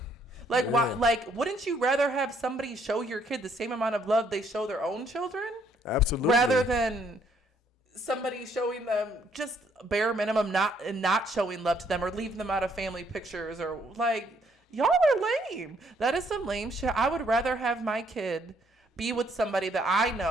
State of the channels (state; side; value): normal; both; correlation 0.68